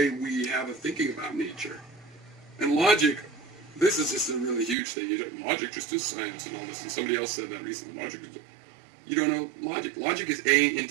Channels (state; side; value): drops out; left; at 4.8 s